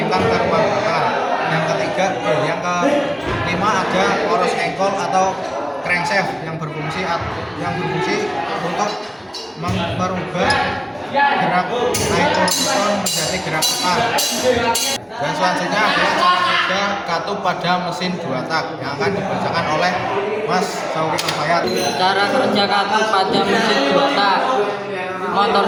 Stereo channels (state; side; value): identical; both; correlation 1.00